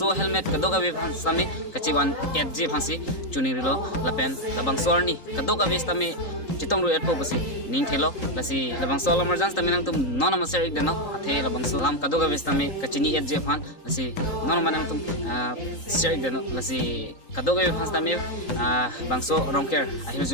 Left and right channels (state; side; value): late; right; 3.8 ms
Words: helmet kado gawi stame kachiwan edje phansi chunirilo lapen labang sorni kado gawi stame chitong ru etpo basi ning thelo lasi labang so emergency tame nang tum non maser ik deno athe labang so lam kado gawi stame kachini edje phan lasi non manang tum ser ik deno lasi kado gawi phan stame bangso rongker ahir